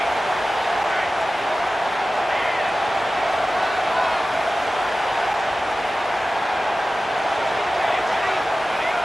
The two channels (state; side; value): normal; both; correlation 0.95